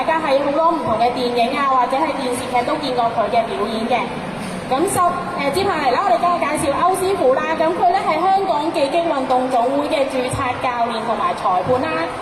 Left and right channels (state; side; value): identical; both; correlation 1.00